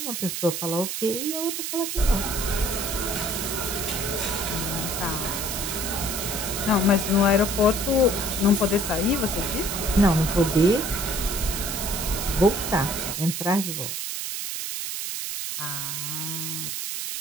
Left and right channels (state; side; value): noise; right; hiss, 3 dB below the sound